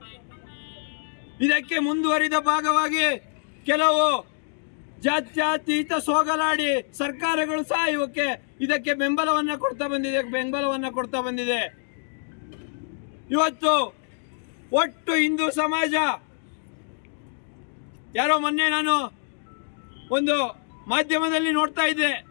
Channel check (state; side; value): silent; right; digital silence